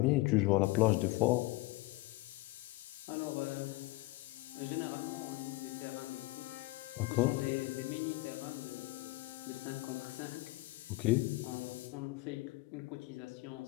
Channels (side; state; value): right; quieter; 20.6 dB